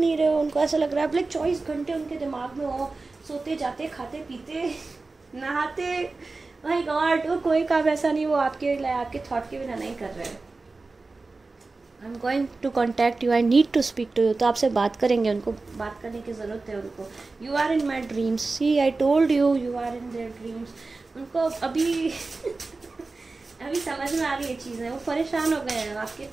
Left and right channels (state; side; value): quieter; left; 3.6 dB